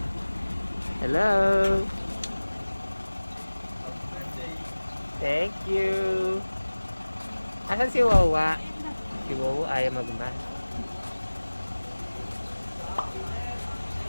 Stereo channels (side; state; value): both; inverted; correlation -1.00